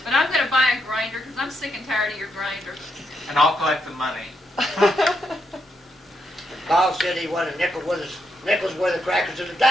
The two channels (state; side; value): normal; both; correlation 0.80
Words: I'm gonna buy a grinder because I'm sick and tired of your grinder. And I'll collect the money. Paul said he wanted nickels worth of crackers and a